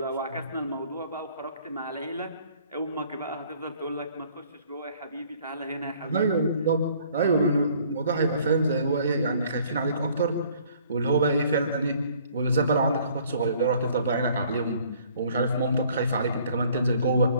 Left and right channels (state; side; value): inverted; both; correlation -0.58